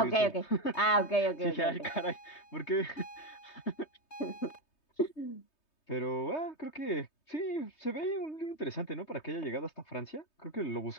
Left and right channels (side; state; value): right; late; 3.2 ms